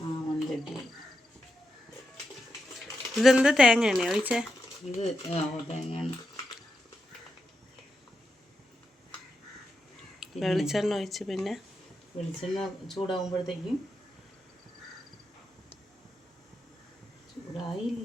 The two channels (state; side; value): normal; both; correlation 0.86